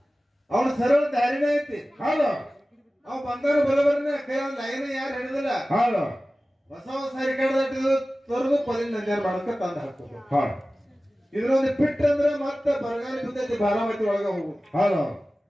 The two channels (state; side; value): normal; both; correlation 0.96